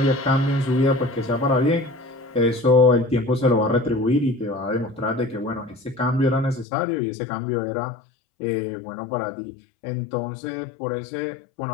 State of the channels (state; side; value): drops out; right; at 6.7 s